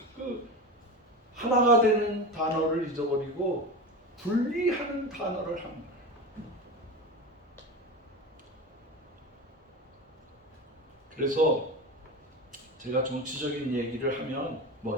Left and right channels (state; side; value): normal; both; correlation 0.25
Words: 하나가 되는 단어를 잊어버리고 분리하는 단어를 한 거예요. 그래서 제가 정치적인 얘기를 하면